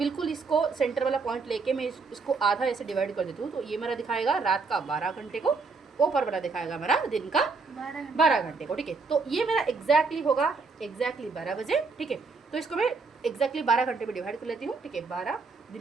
इसको सेंटर वाला पॉइंट लेके मैं इसको आधा ऐसे डिवाइड कर देती हूँ, तो ये मेरा दिखाएगा रात का 12 घंटे को, ऊपर वाला दिखाएगा मेरा दिन का 12 घंटे को। ठीक है, तो ये मेरा एग्जैक्टली होगा एग्जैक्टली 12 बजे। ठीक है, तो इसको मैं एग्जैक्टली 12 घंटे में डिवाइड कर लेती हूँ। ठीक है, 12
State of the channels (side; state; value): left; quieter; 4.4 dB